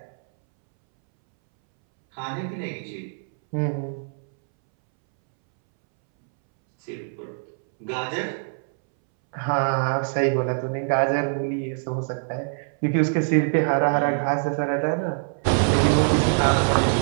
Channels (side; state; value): left; silent; 63 dB below the other